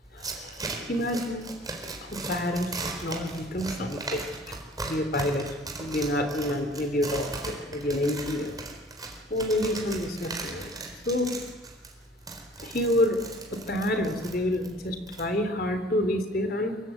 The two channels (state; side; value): normal; both; correlation 0.50